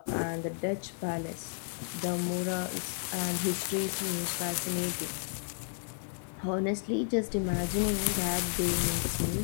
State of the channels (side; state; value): right; silent; digital silence